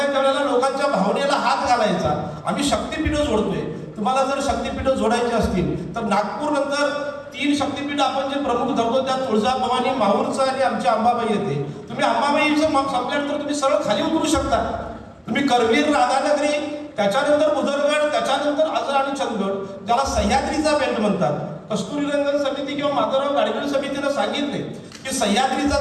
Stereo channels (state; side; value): identical; both; correlation 1.00